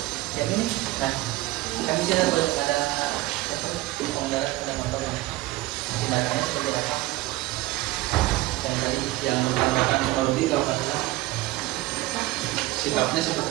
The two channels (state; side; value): quieter; left; 18.6 dB